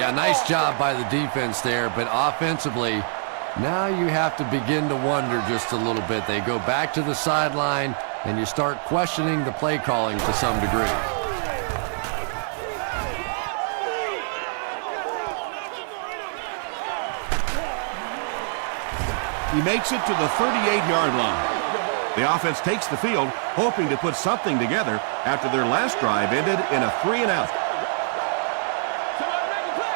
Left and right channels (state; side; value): silent; left; digital silence